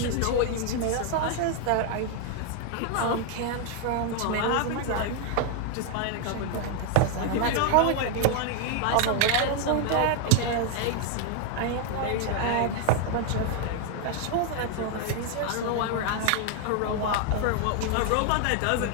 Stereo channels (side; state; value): both; different; correlation 0.00